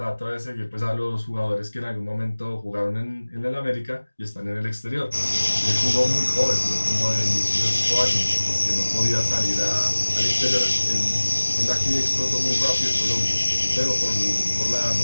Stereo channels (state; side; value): inverted; both; correlation -1.00